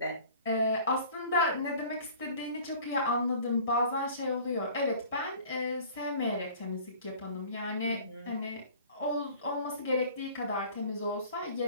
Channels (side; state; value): both; inverted; correlation -0.47